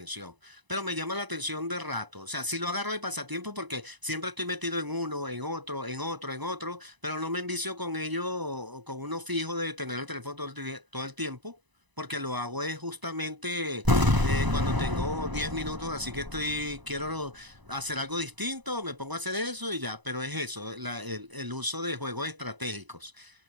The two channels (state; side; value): late; left; 1.0 ms